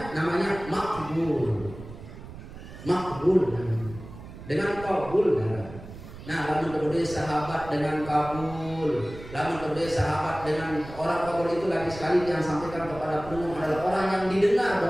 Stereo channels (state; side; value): noise; right; rumble, 14 dB below the sound